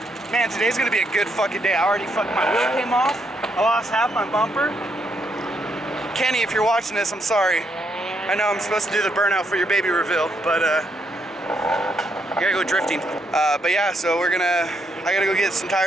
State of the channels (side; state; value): both; normal; correlation 0.76